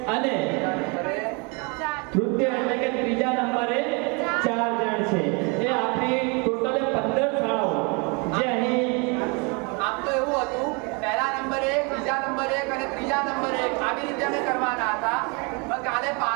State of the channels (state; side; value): quieter; left; 31.7 dB